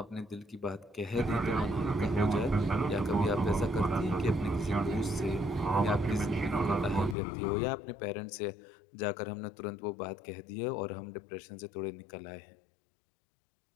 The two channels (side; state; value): right; drops out; at 7.2 s